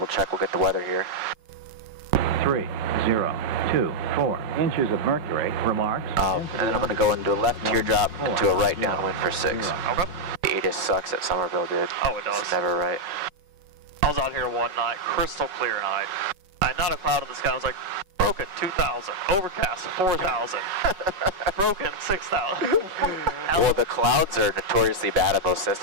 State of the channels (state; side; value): late; left; 5.4 ms